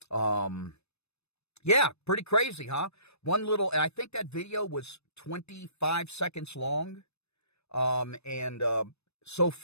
Yeah, pretty crazy, huh? I think that video was 25 seconds long. And so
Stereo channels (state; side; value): late; right; 0.80 ms